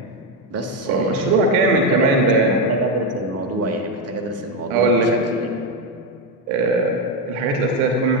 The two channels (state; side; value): normal; both; correlation 0.07